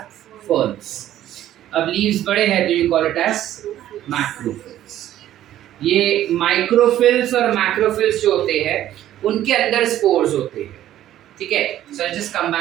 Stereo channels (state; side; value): quieter; left; 12.6 dB